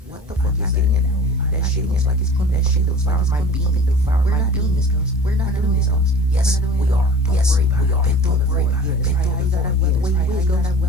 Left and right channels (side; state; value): both; normal; correlation 0.40